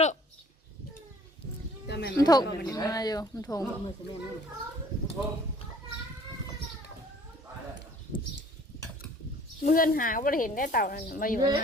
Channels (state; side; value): normal; both; correlation 0.53